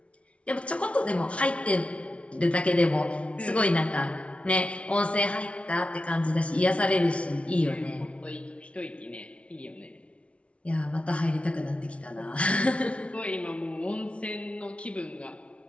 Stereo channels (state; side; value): late; right; 0.062 ms